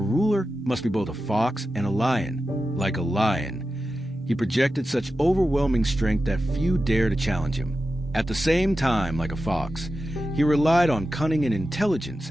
must be both a fox and a lion. Like a lion, he projected such overwhelming strength that few dared to challenge him. At the same time, like a fox, he relied on cunning and intelligence,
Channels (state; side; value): normal; both; correlation 0.92